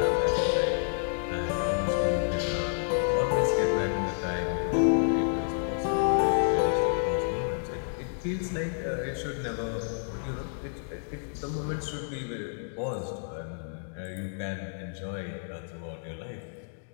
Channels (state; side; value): silent; right; digital silence